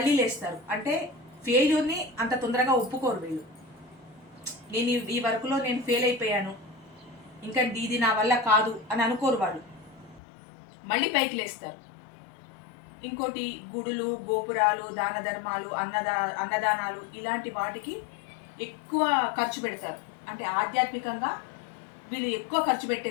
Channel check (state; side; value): drops out; right; at 10.2 s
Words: లేస్తారు. అంటే ఫెయిల్యూర్ని అంత తొందరగా ఒప్పుకోరు వీళ్ళు. నేను ఈ వర్క్లో నేను ఫెయిల్ అయిపోయాను, ఇంకా ఇది నా వల్ల కాదు అని అనుకోరు వాళ్ళు, మళ్ళీ పైకి లేస్తారు. ఇంకోటి, గుడులు, గోపురాలు, దాన ధర్మాలు, అన్నదానాలు ఇలాంటి వాటికి ఎక్కువ ఖర్చు పెడతారు. అంటే ఆధ్యాత్మికంగా వీళ్ళు ఎక్కువ ఖర్చు